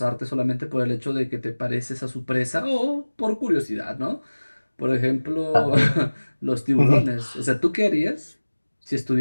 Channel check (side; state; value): both; inverted; correlation -1.00